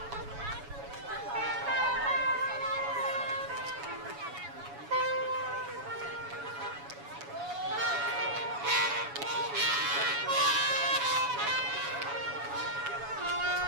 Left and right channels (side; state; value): left; late; 7.1 ms